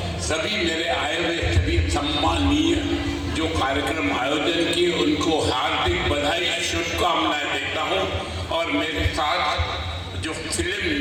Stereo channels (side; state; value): both; identical; correlation 1.00